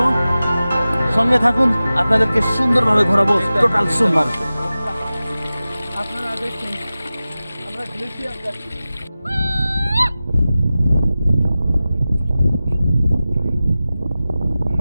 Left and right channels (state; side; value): inverted; both; correlation -0.96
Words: সঙ্গে থাকুন, আপনাদেরকে সুন্দরভাবে ঘোরাবো টোটাল সোনমার্গ। আপনারা দেখছেন আমরা গ্লেশিয়ার যাচ্ছি।